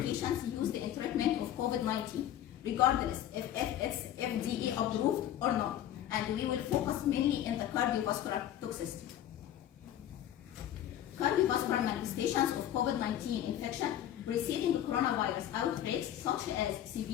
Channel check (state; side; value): quieter; right; 11.5 dB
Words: used in treatment of COVID-19, regardless if it's FDA approved or not, and we will focus mainly in the cardiovascular toxicity. Cardiovascular manifestations of COVID-19 infection preceding coronavirus outbreaks, such as